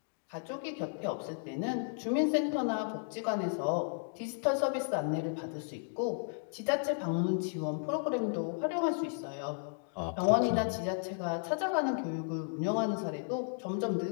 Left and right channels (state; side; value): silent; right; digital silence